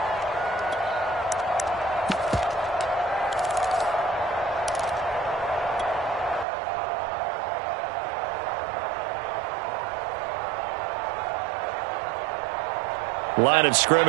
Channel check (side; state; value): left; drops out; at 6.5 s